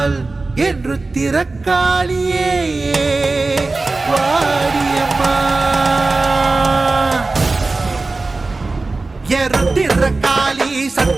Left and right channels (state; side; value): quieter; left; 3.5 dB